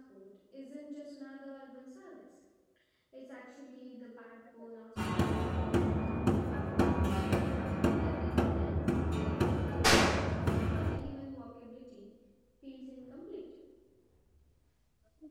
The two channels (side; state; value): both; identical; correlation 1.00